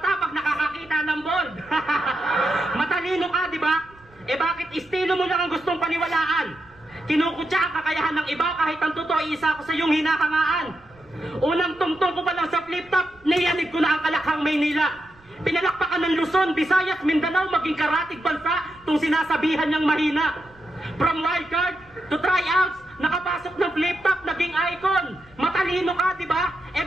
pag nakakakita ng bold. Matalino ka, di ba? Bakit estilo mo lang ang gustong paniwalaan? Kinukutya ang kakayahan ng iba kahit ang totoo isa ko sa iyong hinahangaan. Unang tungtong ko pa lang sa flip top, niyanig ko na ang Kalakhang Maynila. Pinalakpakan ng Luzon, Visayas, Mindanao, maging karatig bansa, tung sinasabihan niyang mahina. From wildcard to tryouts, nakapasok ng flip top, naging icon. Matalino ka, di ba?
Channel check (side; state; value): right; noise; rumble, 28 dB below the sound